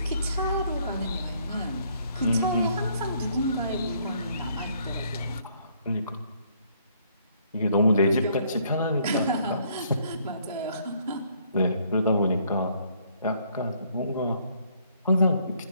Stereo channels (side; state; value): both; inverted; correlation -0.66